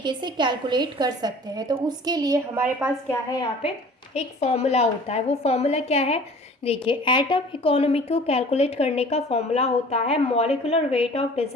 से कैलकुलेट कर सकते हैं, तो उसके लिए हमारे पास क्या है, यहाँ पे एक फॉर्मूला होता है। वो फॉर्मूला क्या है, देखिए एटम इकोनॉमी को कैलकुलेट करने का फॉर्मूला होता है molecular weight of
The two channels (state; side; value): normal; both; correlation 0.47